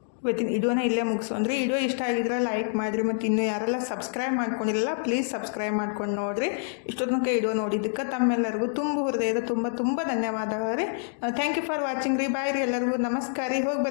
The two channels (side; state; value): right; silent; digital silence